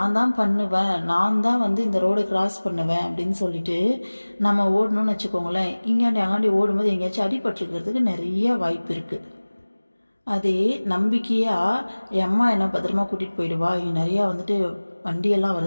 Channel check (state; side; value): inverted; both; correlation -1.00